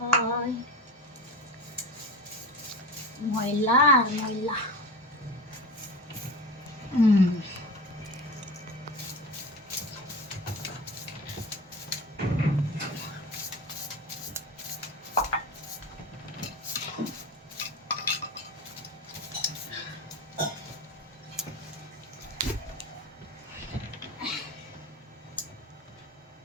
ময়লা আর ময়লা।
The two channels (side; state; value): both; normal; correlation 0.30